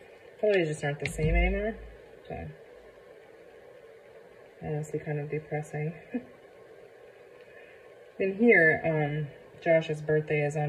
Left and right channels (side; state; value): both; identical; correlation 1.00